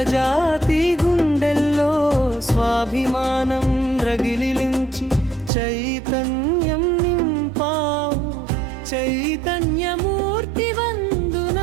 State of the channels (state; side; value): drops out; left; at 5.5 s